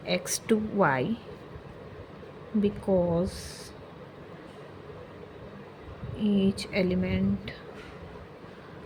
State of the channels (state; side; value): identical; both; correlation 1.00